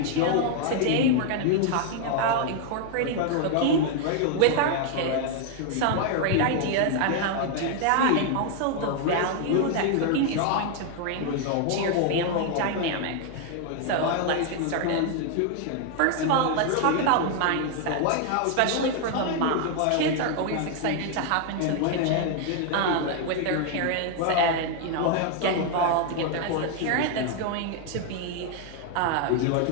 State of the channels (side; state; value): both; different; correlation 0.00